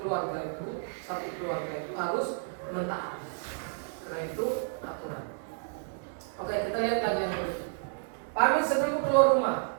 itu, satu keluarga itu harus mentaati. Karena itu aturan. Oke, kita lihat lagi yang berikut. Pamit sebelum keluar rumah.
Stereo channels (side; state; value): left; silent; 57 dB below the other